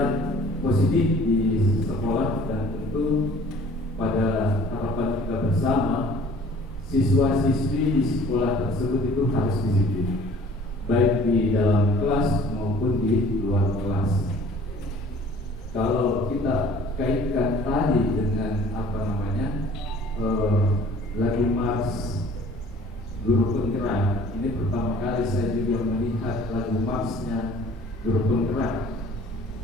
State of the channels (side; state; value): both; normal; correlation 0.51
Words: positif di sekolah, dan tentu pada harapan kita bersama siswa-siswi di sekolah tersebut itu harus disiplin, baik di dalam kelas maupun di luar kelas. Kalau kita kaitkan tadi dengan lagu Mars Guru Penggerak, ini pertama kali saya juga melihat lagu Marsnya Guru Penggerak.